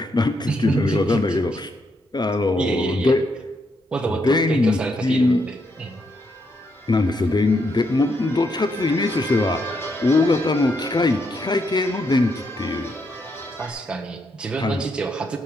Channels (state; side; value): normal; both; correlation 0.78